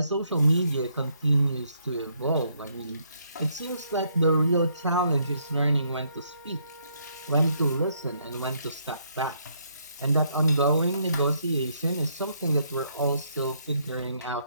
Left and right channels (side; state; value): both; inverted; correlation -0.72